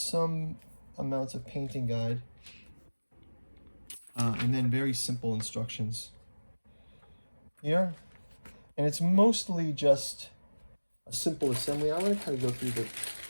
amounts of painting guide. And then very simple instructions here. And it's mostly just a simple assembly. I want to kind of go through the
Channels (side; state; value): both; inverted; correlation -1.00